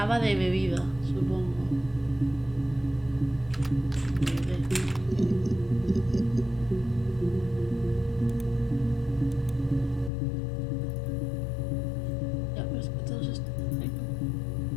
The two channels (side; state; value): right; drops out; at 10.1 s